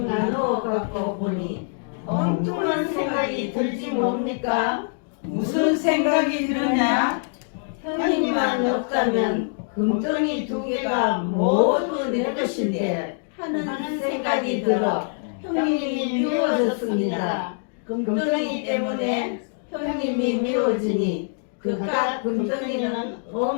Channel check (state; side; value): silent; right; digital silence